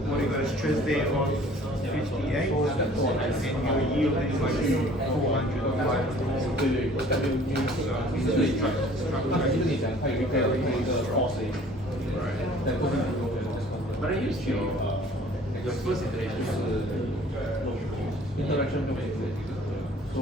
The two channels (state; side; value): normal; both; correlation 0.52